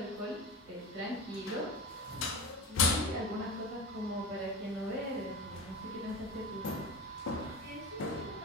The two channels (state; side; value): normal; both; correlation 0.28